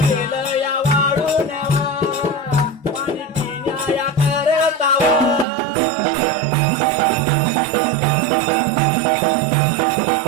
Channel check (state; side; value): drops out; left; at 5.5 s